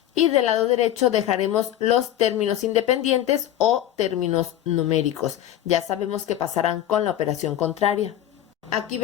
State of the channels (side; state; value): right; quieter; 12.0 dB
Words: y del lado derecho dejaremos los términos independientes o términos numéricos. Ya sabemos que pasarán con la operación contraria. Aquí